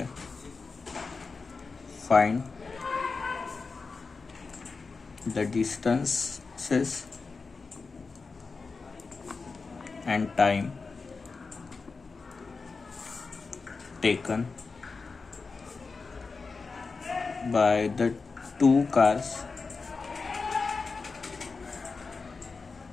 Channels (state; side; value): quieter; right; 4.4 dB